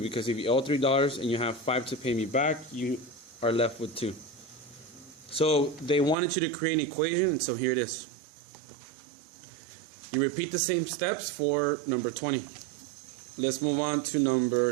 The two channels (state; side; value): drops out; left; at 6.2 s